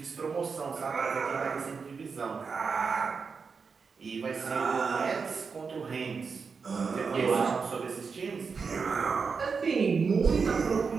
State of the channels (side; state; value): left; quieter; 5.3 dB